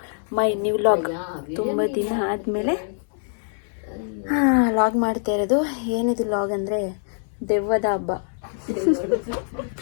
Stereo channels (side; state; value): right; silent; 63 dB below the other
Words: my new vlog. ತುಂಬ ದಿನ ಆದಮೇಲೆ log ಮಾಡ್ತಾ ಇರೋದು. ಏನಿದು ಲಾಗ್ ಅಂದರೆ ದೆವ್ವದ ಹಬ್ಬ.